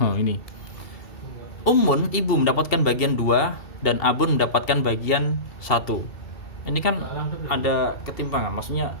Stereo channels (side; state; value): right; late; 2.7 ms